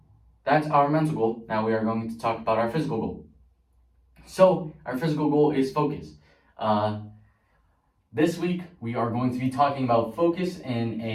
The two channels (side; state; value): both; identical; correlation 1.00